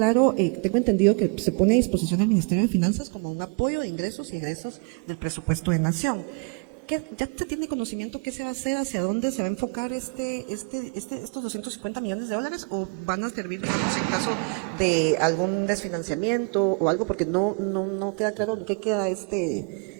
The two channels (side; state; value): left; quieter; 36.3 dB